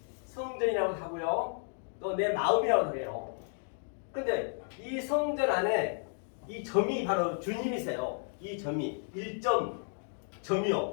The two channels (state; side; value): silent; right; 56 dB below the other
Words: 성전이라고 하고요. 또 내 마음이라고 해요. 근데 이 성전 안에 이 점이 바로 주님이세요. 이 점이